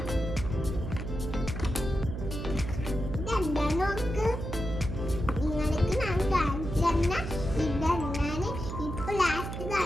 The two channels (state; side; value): noise; right; hum, 6 dB below the sound